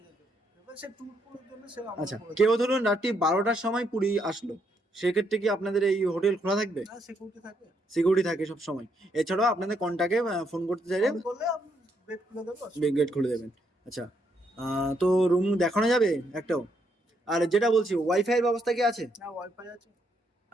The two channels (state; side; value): normal; both; correlation 0.75